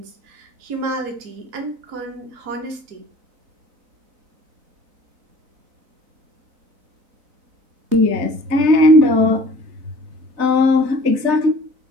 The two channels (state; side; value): late; left; 4.0 ms